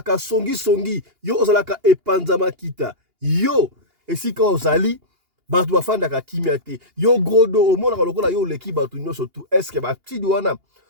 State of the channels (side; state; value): left; late; 2.8 ms